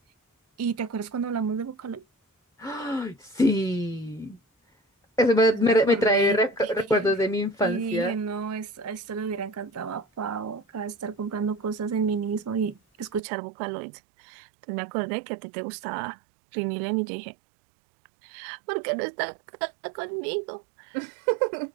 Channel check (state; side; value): drops out; left; at 13.2 s